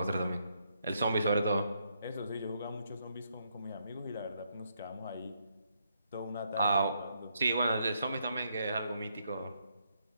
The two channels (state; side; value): inverted; both; correlation -0.76